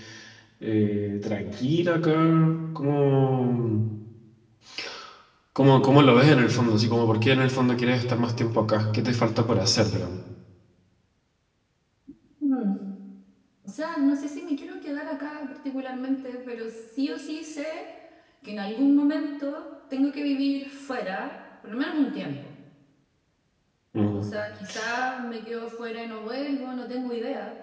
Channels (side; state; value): both; identical; correlation 1.00